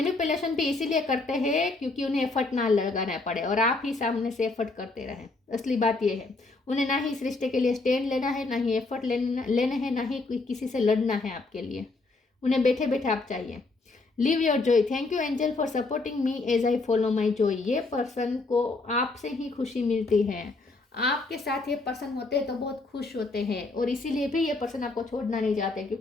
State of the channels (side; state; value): right; quieter; 3.5 dB